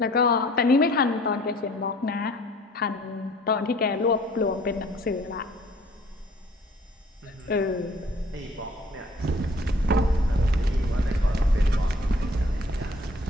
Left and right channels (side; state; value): both; normal; correlation 0.55